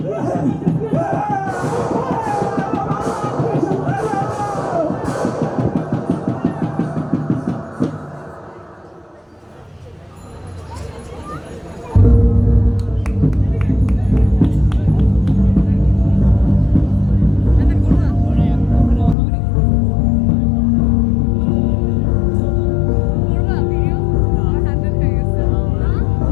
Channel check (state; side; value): drops out; right; at 19.2 s